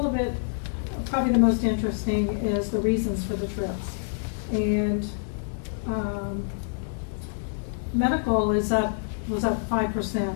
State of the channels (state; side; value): silent; right; digital silence